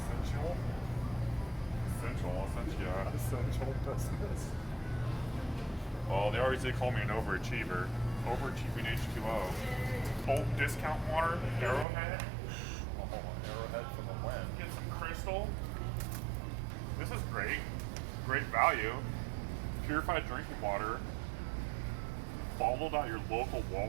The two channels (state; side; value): drops out; left; at 11.9 s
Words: Essential. Essential business. Well, they always did call me an overachiever. Overachieving H2O. Bulk discount water, Arrowhead. Arrowhead for the win. Get some crystal. This is great. Great value. Purified drinking water. Bottled at your local